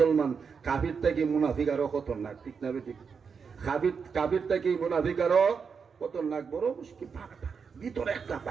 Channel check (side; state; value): left; quieter; 5.9 dB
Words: কাফির থেকে মুনাফিক আরো খতরনাক, ঠিক না? ঠিক। কাফির থেকে মুনাফিক আরো খতরনাক, বড় মুশকিল। ভিতরে একটা